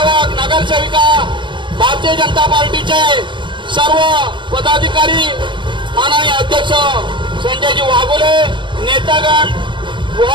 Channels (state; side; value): late; left; 0.23 ms